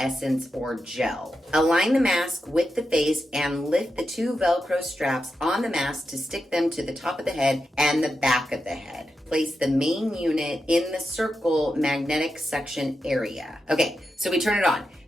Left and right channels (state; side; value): normal; both; correlation 0.88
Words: or gel. Align the mask with the face and lift the two Velcro straps on the mask to stick them to the top of the head and the back of the head. Place the main unit in the circle magnetic section area. Okay, so we turn it on.